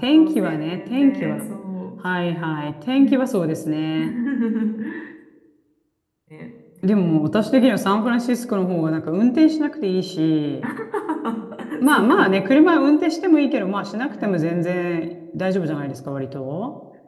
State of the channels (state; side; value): identical; both; correlation 1.00